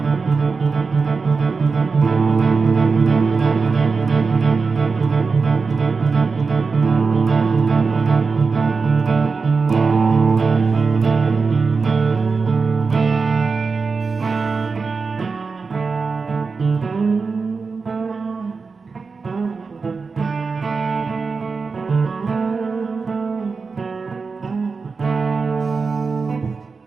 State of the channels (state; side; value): quieter; left; 4.7 dB